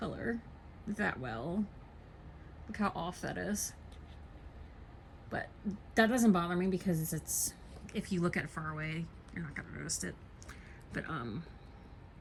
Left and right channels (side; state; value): both; identical; correlation 1.00